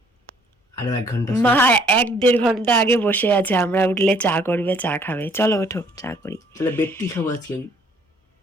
আরো 1 ঘন্টা। মা 1-1.5 ঘন্টা আগে বসে আছে, আমরা উঠলে চা করবে, চা খাবে। চলো ওঠো, চা করি। তাহলে বেডটি খাবো আজকে আমি।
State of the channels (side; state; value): both; normal; correlation 0.61